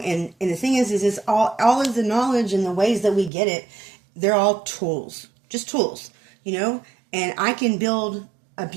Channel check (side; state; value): left; drops out; at 3.3 s